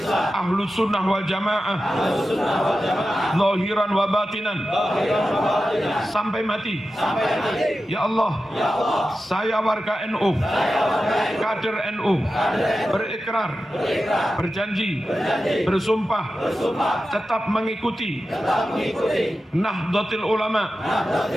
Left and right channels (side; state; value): both; normal; correlation 0.92